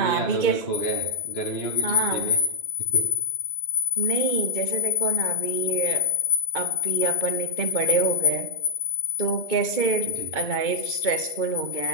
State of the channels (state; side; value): late; right; 2.3 ms